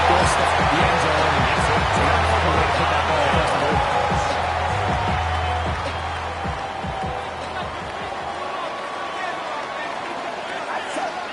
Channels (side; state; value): both; identical; correlation 1.00